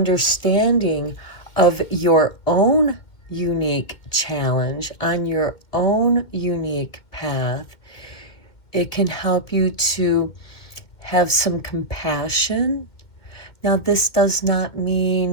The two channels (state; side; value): late; right; 2.1 ms